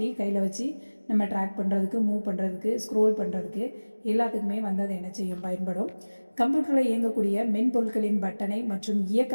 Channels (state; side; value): inverted; both; correlation -1.00